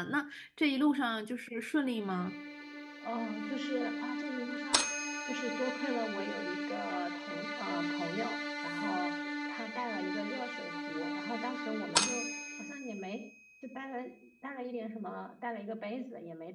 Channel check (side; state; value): both; identical; correlation 1.00